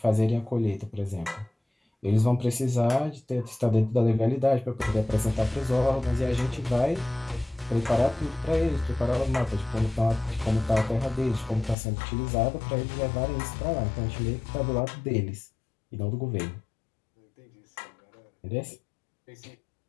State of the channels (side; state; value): right; drops out; at 11.8 s